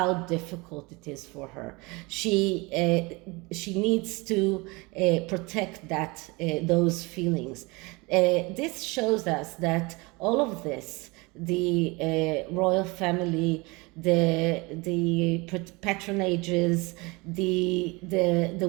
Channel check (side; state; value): left; quieter; 25.6 dB